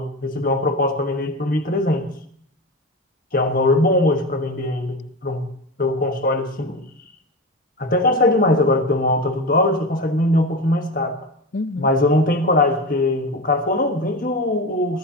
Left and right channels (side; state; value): both; normal; correlation 0.24